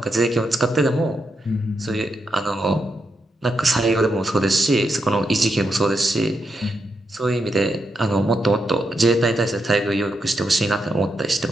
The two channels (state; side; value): normal; both; correlation 0.83